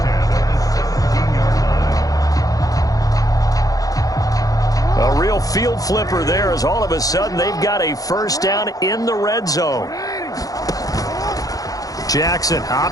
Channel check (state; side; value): late; right; 0.17 ms